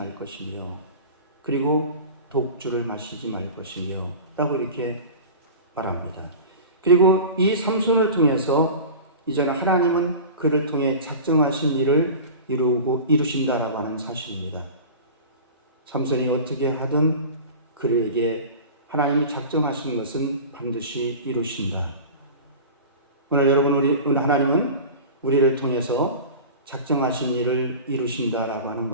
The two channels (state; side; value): inverted; both; correlation -0.35